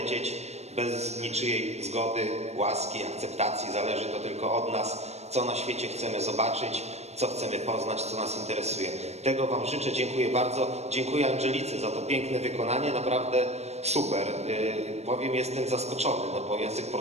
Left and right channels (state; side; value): late; left; 0.31 ms